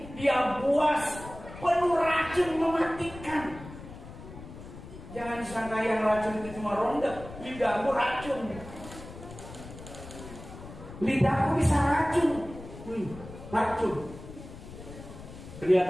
Dia buas, penuh racun mematikan. Jangan sangka yang racun itu cuma ronda. Lidahmu racun. Lidahku bisa racun. Racun.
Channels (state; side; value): noise; left; rumble, 14 dB below the sound